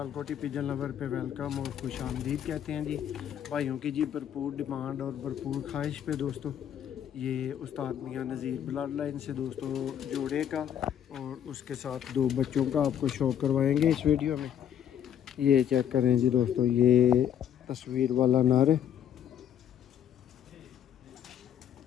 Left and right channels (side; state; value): right; quieter; 9.7 dB